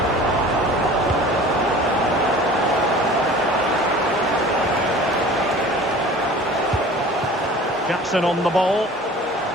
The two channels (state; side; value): normal; both; correlation 0.43